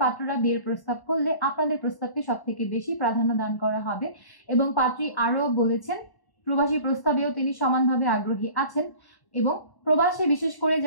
পাত্ররা বিয়ের প্রস্তাব করলে আপনাদের প্রস্তাবকে সব থেকে বেশি প্রাধান্য দান করা হবে। এবং পাত্রী আরও বলেছেন প্রবাসী প্রস্তাবেও তিনি সমানভাবে আগ্রহী আছেন এবং প্রবাসে বিশেষ করে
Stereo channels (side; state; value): right; late; 1.1 ms